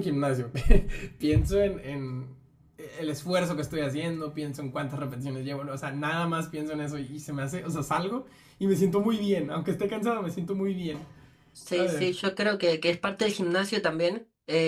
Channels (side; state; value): both; identical; correlation 1.00